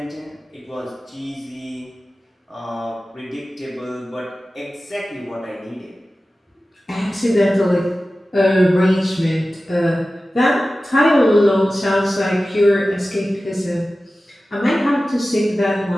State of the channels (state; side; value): normal; both; correlation 0.95